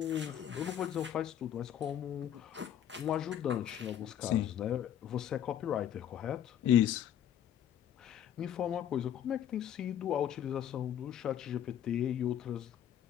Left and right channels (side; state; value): right; quieter; 10.2 dB